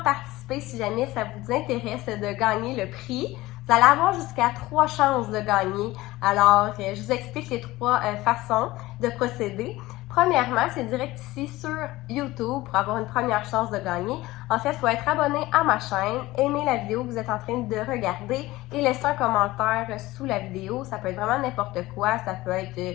participer si jamais ça vous intéresse de gagner le prix. Vous allez avoir jusqu'à 3 chances de gagner. Alors, je vous explique les 3 façons de procéder. Premièrement, c'est direct ici sur YouTube pour avoir une première chance de gagner. En fait, il faut être abonné à ma chaîne, aimer la vidéo que vous êtes en train de regarder et laisser un commentaire sous la vidéo. Ça peut être vraiment n'importe quoi. Ça peut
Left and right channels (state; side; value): quieter; right; 18.5 dB